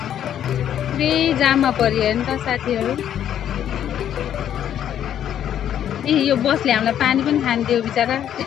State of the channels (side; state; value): right; quieter; 10.2 dB